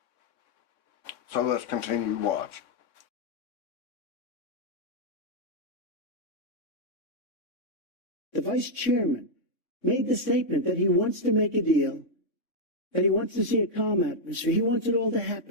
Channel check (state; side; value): late; right; 3.6 ms